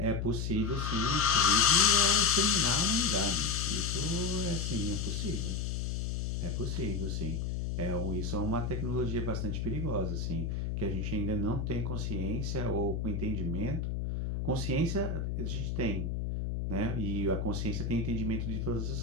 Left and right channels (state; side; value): noise; left; hum, 2 dB below the sound